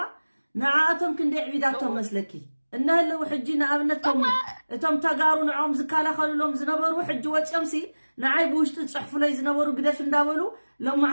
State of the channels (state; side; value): inverted; both; correlation -1.00